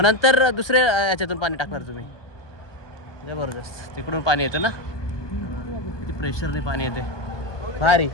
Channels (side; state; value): right; late; 1.2 ms